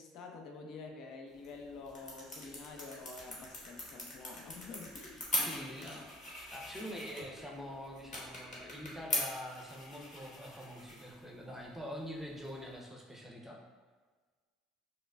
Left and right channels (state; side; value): normal; both; correlation 0.47